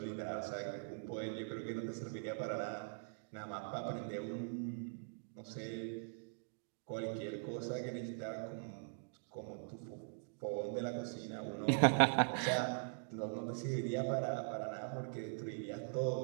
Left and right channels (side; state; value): left; silent; digital silence